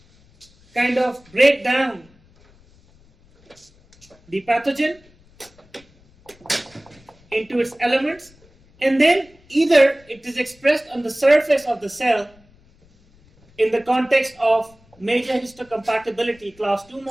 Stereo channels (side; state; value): left; noise; rumble, 29 dB below the sound